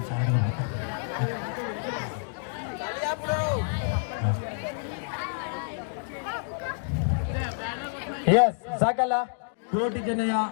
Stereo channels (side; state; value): right; silent; digital silence